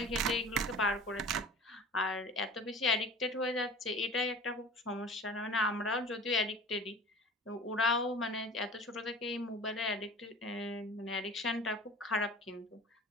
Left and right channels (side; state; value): both; normal; correlation 0.41